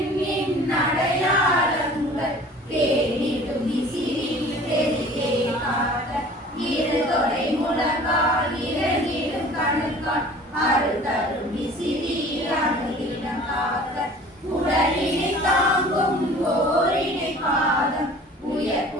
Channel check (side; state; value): both; normal; correlation 0.46